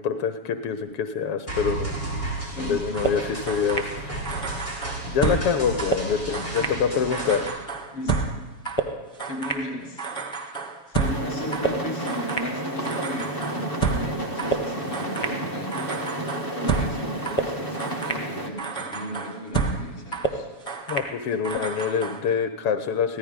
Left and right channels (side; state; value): right; late; 7.2 ms